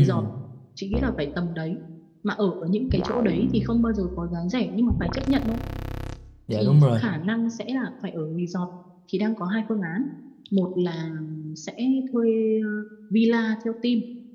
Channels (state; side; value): identical; both; correlation 1.00